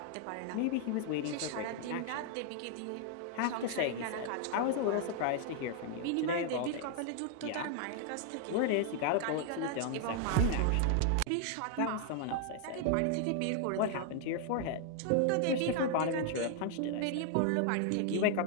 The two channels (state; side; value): different; both; correlation 0.00